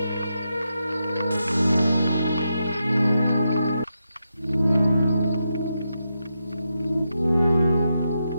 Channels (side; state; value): both; inverted; correlation -0.86